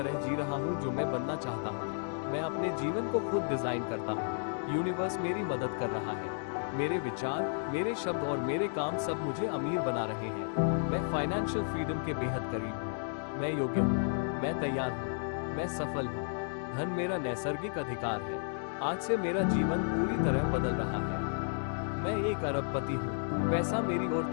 जी रहा हूँ जो मैं बनना चाहता हूँ। मैं अपने जीवन को खुद डिजाइन करता हूँ। यूनिवर्स मेरी मदद कर रहा है। मेरे विचार, मेरे शब्द और मेरे काम सब मुझे अमीर बना रहे हैं। मैं फाइनेंशियल फ्रीडम के बेहद करीब हूँ। मैं योग्य हूँ। मैं तैयार हूँ। मैं सफल हूँ। धन मेरा नैसर्गिक अधिकार है। आज से मेरा जीवन पूरी तरह बदल रहा है। मैं एक अरबपति हूँ। पैसा मेरी ओर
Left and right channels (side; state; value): right; silent; digital silence